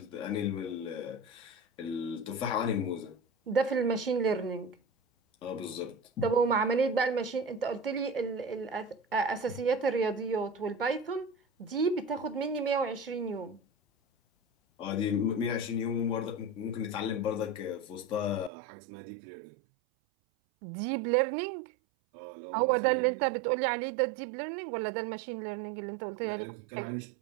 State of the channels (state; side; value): drops out; left; at 18.5 s